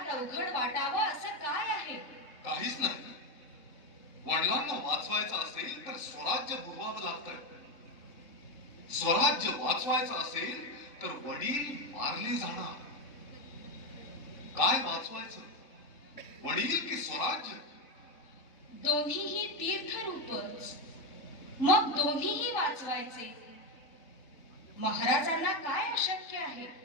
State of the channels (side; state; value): right; late; 3.6 ms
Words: अवघड वाटावं असं काय आहे? काहीच नाही. वडिलांना वाचवायचं असेल तर स्वराज्य बुडवावं लागतं. स्वराज्य वाचवायचं असेल तर वडील मारले जाणार. काय वाचवायचं? वडील की स्वराज्य? दोन्हीही तीर्थरूपच. मग दोन्हीही वाचवायचे. महाराजांना काय अशक्य आहे?